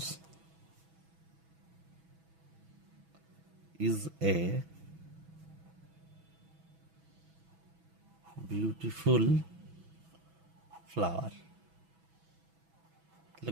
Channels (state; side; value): late; left; 6.1 ms